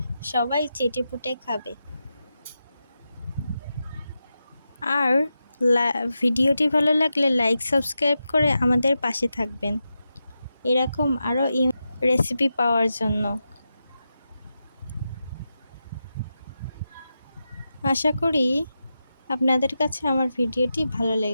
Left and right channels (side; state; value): both; inverted; correlation -0.89